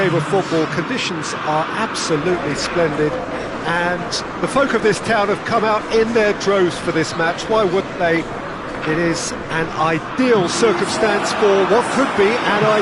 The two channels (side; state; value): both; identical; correlation 1.00